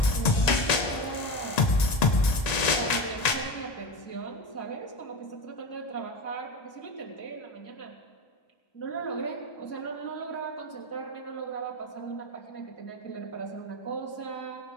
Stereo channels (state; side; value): late; right; 1.9 ms